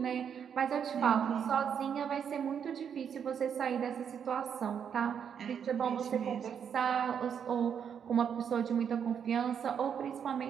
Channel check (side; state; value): left; quieter; 7.8 dB